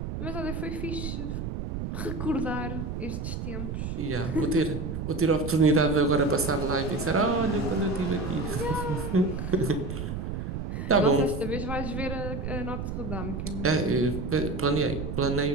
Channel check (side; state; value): right; noise; rumble, 4 dB below the sound